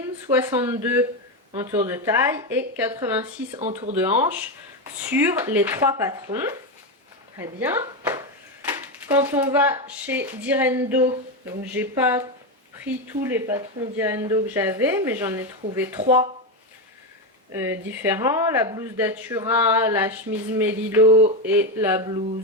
62 en tour de taille et 86 en tour de hanche sur les 3 patrons. Très bien. Quand on va chez Direndo, donc j'ai pas pris tous les patrons Direndo que j'avais, mais j'en ai trouvé 3 différents. La blouse Datura, la chemise Melilot et la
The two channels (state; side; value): normal; both; correlation 0.11